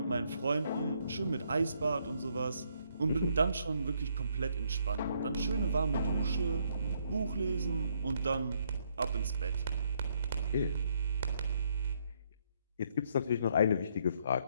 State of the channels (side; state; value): both; inverted; correlation -0.71